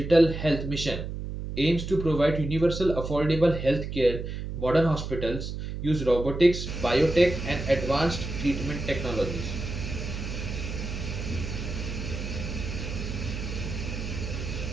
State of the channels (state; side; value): noise; right; hum, 6 dB below the sound